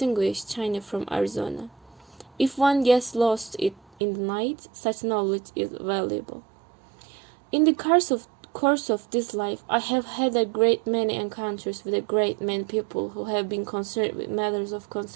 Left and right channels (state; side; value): drops out; left; at 3.8 s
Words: China from Arizona. If one gets lost in the night, such knowledge is valuable. In the course of this life, I have had a great many encounters with a great many people who have been concerned with matters of